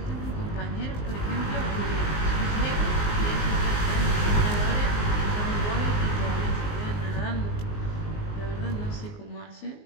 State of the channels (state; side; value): late; right; 19 ms